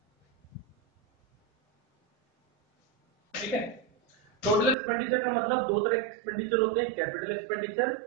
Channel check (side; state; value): left; drops out; at 4.8 s